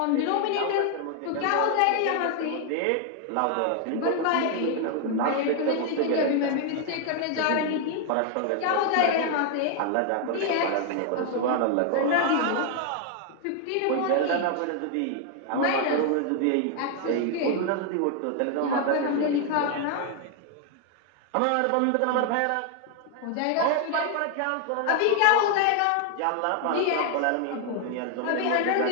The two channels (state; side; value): different; both; correlation 0.00